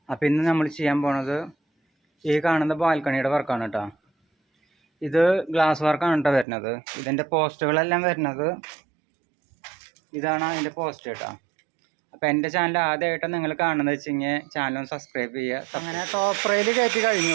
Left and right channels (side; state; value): left; drops out; at 6.5 s